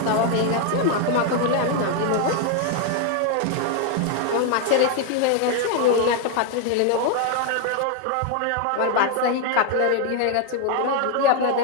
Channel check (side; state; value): both; different; correlation 0.01